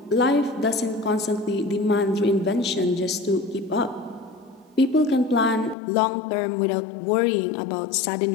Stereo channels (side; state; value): right; drops out; at 5.8 s